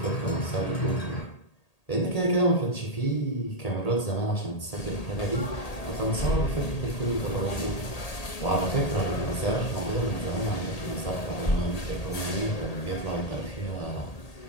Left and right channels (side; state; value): right; late; 1.8 ms